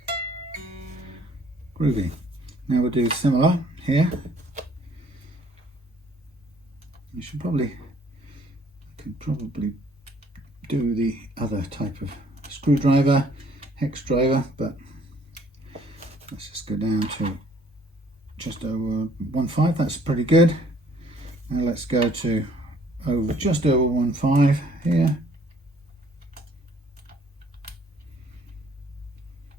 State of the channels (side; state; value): both; normal; correlation 0.60